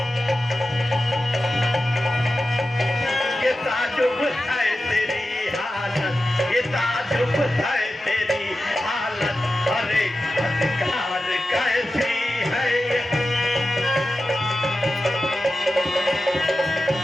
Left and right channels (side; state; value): both; normal; correlation 0.93